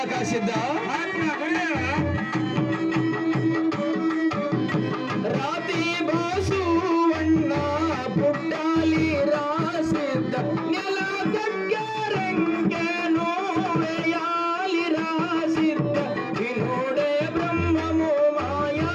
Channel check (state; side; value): identical; both; correlation 1.00